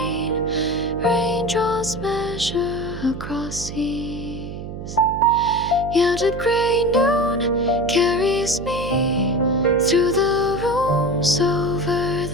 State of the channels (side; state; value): right; noise; hum, 9 dB below the sound